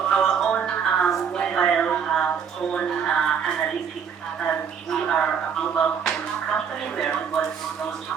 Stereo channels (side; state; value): left; quieter; 7.1 dB